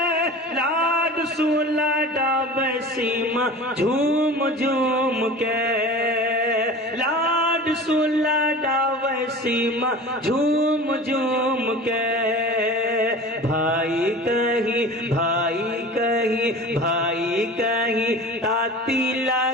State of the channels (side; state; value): both; normal; correlation 0.37